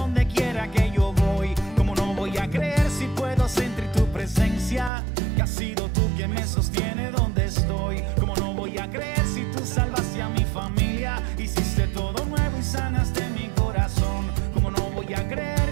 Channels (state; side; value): drops out; left; at 4.9 s